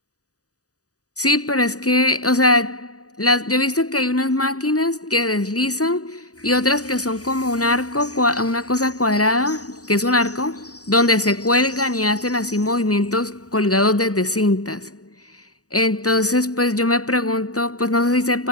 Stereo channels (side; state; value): right; late; 0.67 ms